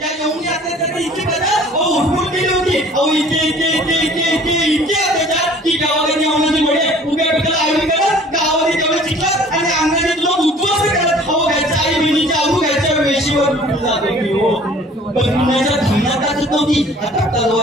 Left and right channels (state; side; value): normal; both; correlation 0.51